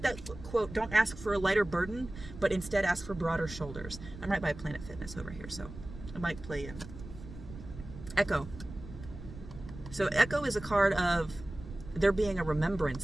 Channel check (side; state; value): right; noise; rumble, 13 dB below the sound